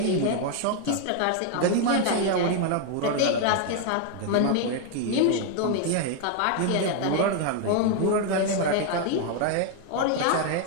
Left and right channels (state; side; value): different; both; correlation 0.00